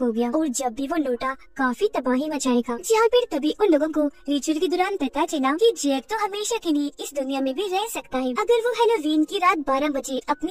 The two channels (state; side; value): identical; both; correlation 1.00